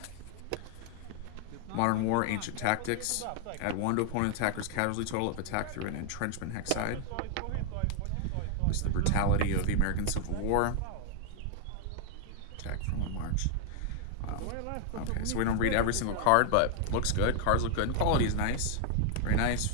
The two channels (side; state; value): both; different; correlation 0.00